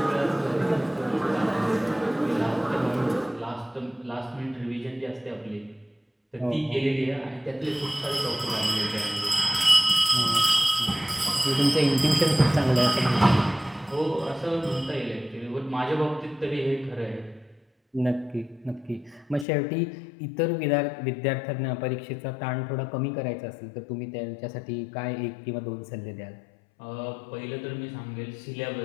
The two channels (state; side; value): drops out; right; at 19.5 s